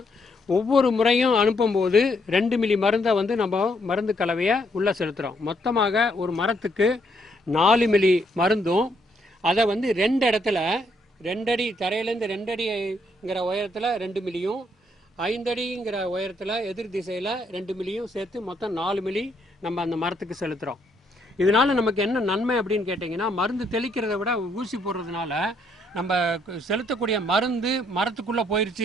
ஒவ்வொரு முறையும் அனுப்பும்போது 2 மில்லி மருந்தை வந்து நம்ம மருந்து கலவையை உள்ளே செலுத்துகிறோம். மொத்தமாக ஒரு மரத்துக்கு 4 மில்லி மருந்தும் அதை வந்து 2 இடத்துல 2 அடி தரையிலேருந்து 2 அடிங்கிற உயரத்தில் 2 மில்லியும் 5 அடிங்கிற உயரத்தில் எதிர் திசையில் 2 மில்லியும் சேர்த்து மொத்தம் 4 மில்லி நம்ம அந்த மரத்துக்கு செலுத்துகிறோம். இதனால் நமக்கு என்ன நன்மை அப்படின்னு கேட்டிங்கன்னா மருந்து தெளிக்கிறத விட ஊசி போடுறதுனால நம்ம செலுத்தக்கூடிய மருந்து மரத்துக்குள்ளே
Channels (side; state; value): both; normal; correlation 0.72